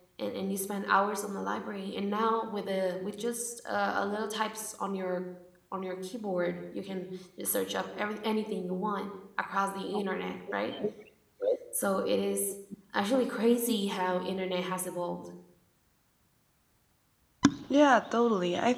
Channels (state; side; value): identical; both; correlation 1.00